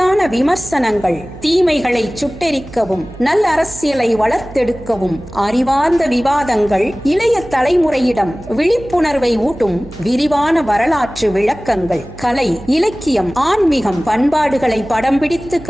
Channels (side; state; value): right; noise; hum, 18 dB below the sound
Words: விமர்சனங்கள், தீமைகளை சுட்டெரிக்கவும் நல்ல அரசியலை வளர்த்தெடுக்கவும் அறிவார்ந்த விவாதங்கள், இளைய தலைமுறையிடம் விழிப்புணர்வை ஊட்டும் விரிவான வரலாற்று விளக்கங்கள், கலை, இலக்கியம், ஆன்மீகம், பண்பாடுகளை படம் பிடித்து